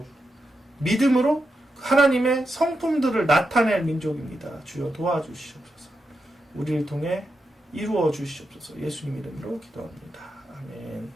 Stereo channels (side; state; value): both; normal; correlation 0.86